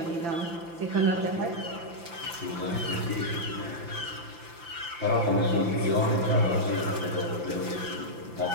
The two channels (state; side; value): late; left; 5.9 ms